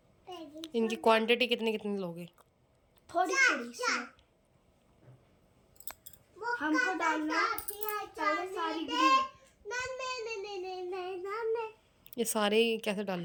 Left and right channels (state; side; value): identical; both; correlation 1.00